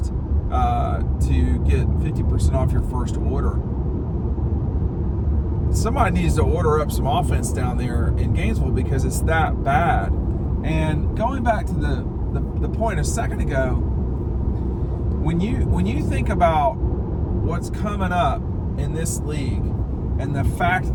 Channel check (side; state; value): both; identical; correlation 1.00